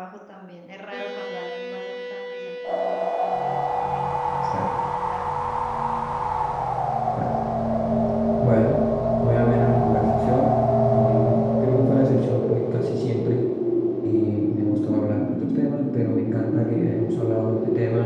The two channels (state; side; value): identical; both; correlation 1.00